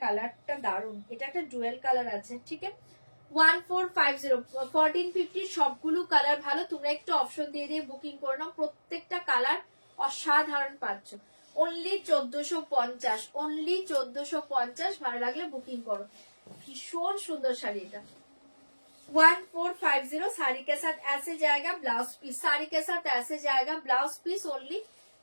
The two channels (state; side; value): inverted; both; correlation -1.00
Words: কালারটা দারুণ, এটা একটা ডুয়েল কালার আছে, ঠিক আছে 1450 1450। সবগুলো কালার ভালো, তোমরা একটু অপশন দিয়ে দিয়ে বুকিং করে নাও, প্রত্যেকটা কালার অসাধারণ পাচ্ছ। Only 1450 only 1450। ভালো লাগলে বুকিং করো, ভীষণ সুন্দর শাড়ি এটা 1450। साड़ी के साथ ऐसे जाएगा ब्लाउज पीस, साड़ी के साथ ऐसे जाएगा ब्लाउज पीस, ओनली